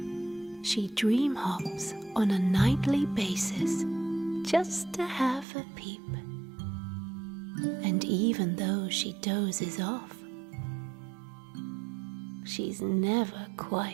She dream hops on a nightly basis just to have a peep. And even though she dozes off, she's never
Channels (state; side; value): drops out; left; at 5.5 s